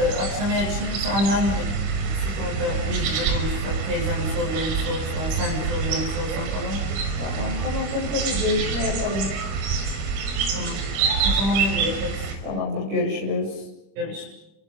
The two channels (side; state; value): left; late; 26 ms